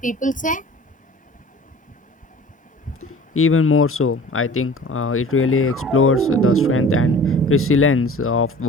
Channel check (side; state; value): both; normal; correlation 0.44